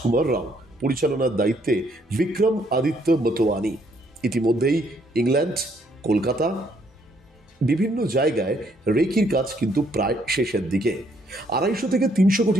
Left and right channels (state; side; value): normal; both; correlation 0.69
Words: রাও, পরিচালনার দায়িত্বে বিক্রম আদিত্য মতোয়ানি। ইতিমধ্যেই ইংল্যান্ড, কলকাতা, বিভিন্ন জায়গায় রেকির কাজ কিন্তু প্রায় শেষের দিকে। 250 থেকে 300